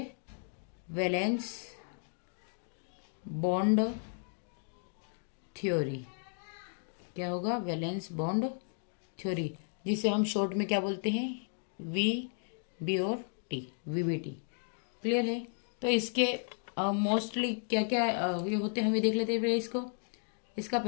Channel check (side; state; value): right; silent; 55 dB below the other